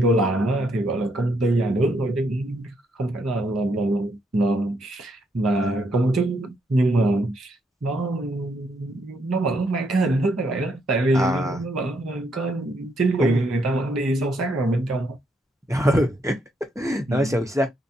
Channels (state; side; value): normal; both; correlation 0.75